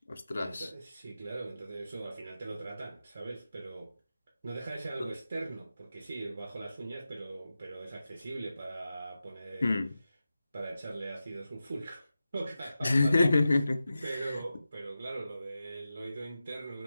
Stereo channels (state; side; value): inverted; both; correlation -0.92